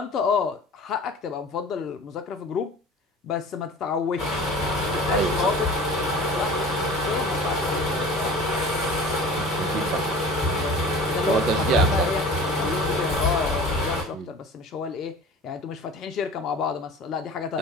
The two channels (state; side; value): normal; both; correlation 0.41